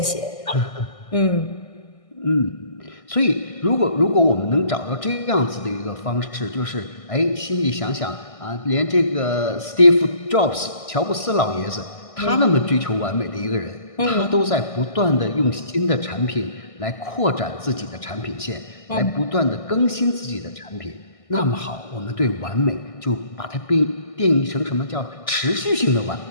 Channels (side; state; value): right; late; 1.6 ms